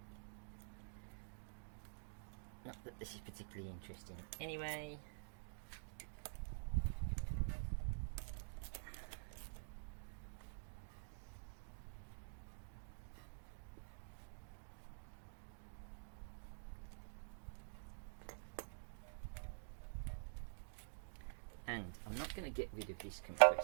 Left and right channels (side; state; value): left; silent; digital silence